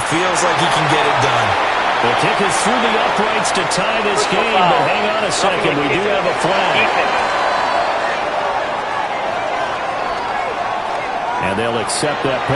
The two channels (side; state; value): both; identical; correlation 1.00